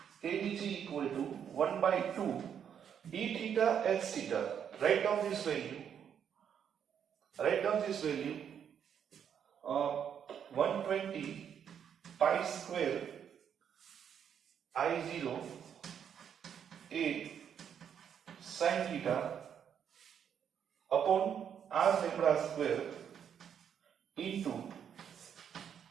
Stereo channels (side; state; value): left; quieter; 8.3 dB